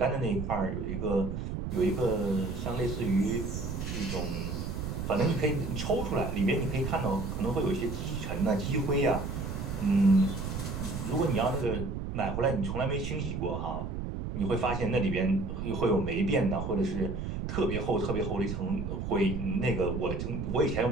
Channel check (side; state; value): right; noise; rumble, 4 dB below the sound